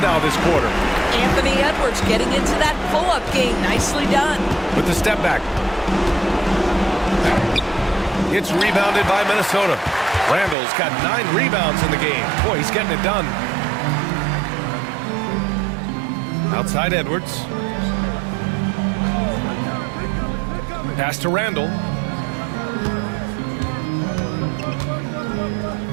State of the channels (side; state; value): left; drops out; at 10.6 s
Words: now this quarter. Anthony Edwards getting into that pull-up game. Nicely done. With the step back. It's rebounded by Minnesota. Randall's got 9 rebounds in the game. Boy, he's getting it done. Outside Edwards. Pass to Randall.